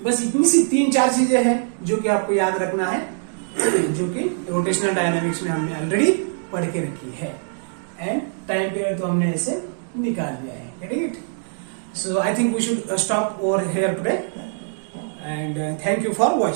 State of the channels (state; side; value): silent; left; digital silence